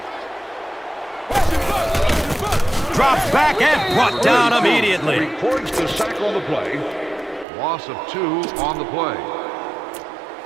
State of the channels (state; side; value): drops out; left; at 7.5 s